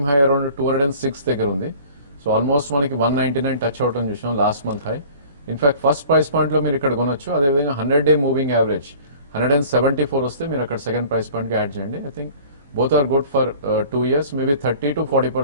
హై అరౌండ్ 206 దగ్గర ఉంది. సో ఆల్మోస్ట్ మనకి 199 టచ్ అవటం చూసాం last month high. In fact first price point లో మీరు ఇక్కడ కొనొచ్చు. అదేవిధంగా 100-day మూవింగ్ యావరేజ్ 174 వస్తే మీరు అక్కడ సెకండ్ ప్రైస్ పాయింట్ కి యాడ్ చేయండి. I think both are good for 2 years. Maybe 30 to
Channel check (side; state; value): both; inverted; correlation -0.47